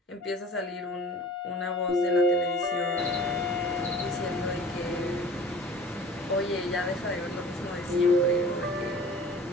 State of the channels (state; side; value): normal; both; correlation 0.44